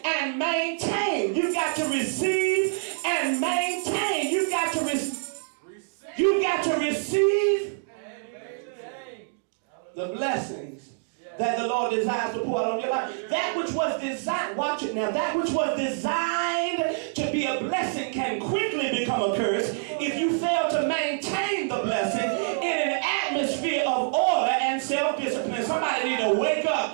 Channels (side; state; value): left; silent; digital silence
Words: and maintain. You got to receive and maintain. You got to receive the blessings that the Lord desires to pour out on your life. That which was designed, watch it now, that which was designed to be a blessing can quickly become a curse if you fail to maintain the blessing in an atmosphere of order and self-discipline. Somebody need to wake